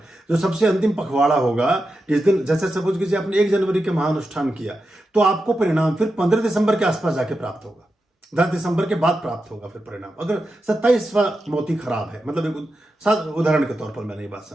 जो सबसे अंतिम पखवाड़ा होगा, जिस दिन जैसे सपोज कीजिए आपने 1 जनवरी के महानुष्ठान किया, तो आपको परिणाम फिर 15 दिसंबर के आसपास जाके प्राप्त होगा, 10 दिसंबर के बाद प्राप्त होगा फिर परिणाम, अगर 27वां मोती खराब है। मतलब एक उदाहरण के तौर पर मैंने ये बात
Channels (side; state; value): both; normal; correlation 0.89